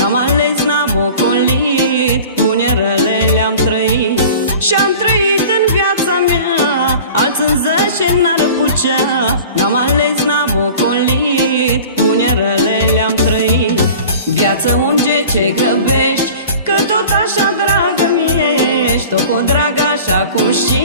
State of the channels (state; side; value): inverted; both; correlation -0.41